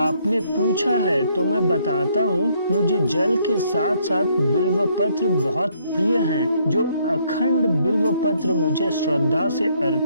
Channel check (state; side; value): inverted; both; correlation -0.69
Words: पूछा है तो मैं बताता हूँ। मुझे जल के साथ साथ बिल्व पत्र बहुत प्रिय हैं। जो अखंड बिल्व पत्र मुझे श्रद्धा से